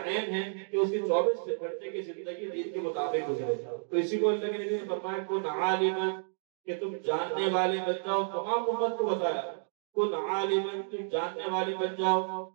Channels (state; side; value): silent; left; digital silence